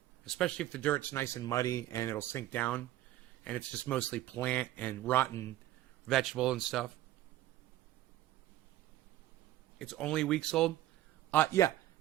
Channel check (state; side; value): quieter; left; 14.4 dB